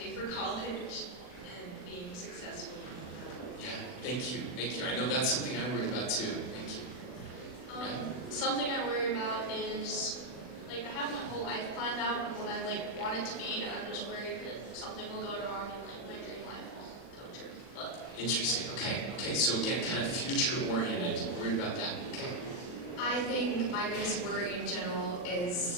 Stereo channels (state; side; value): late; right; 39 ms